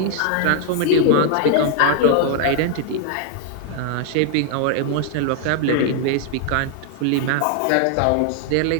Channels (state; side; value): different; both; correlation 0.00